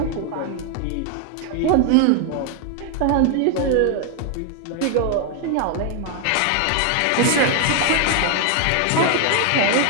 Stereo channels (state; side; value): different; both; correlation 0.00